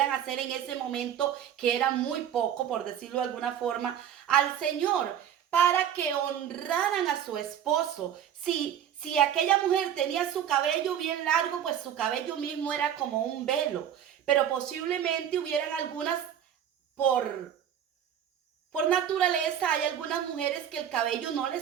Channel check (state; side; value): quieter; left; 9.7 dB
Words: hacer en ese momento, que era muy poco, por decirlo de alguna forma, al Señor, para que honraran a su esposo. Si aquella mujer tenía su cabello bien largo, pues su cabello mismo era como un velo. Pero posiblemente hubieran algunas, por naturaleza, hay algunas mujeres que el cabello no les